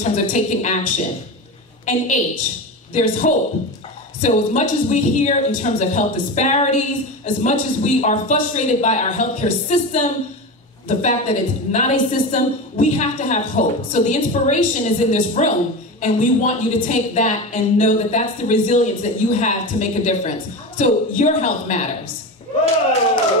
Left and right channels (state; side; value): normal; both; correlation 0.24